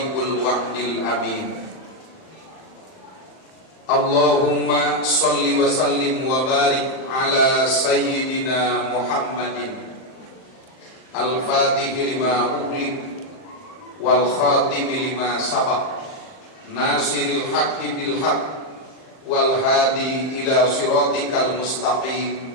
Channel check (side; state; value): right; late; 38 ms